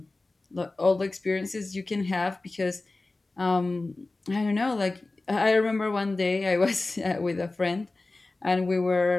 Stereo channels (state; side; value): quieter; right; 3.2 dB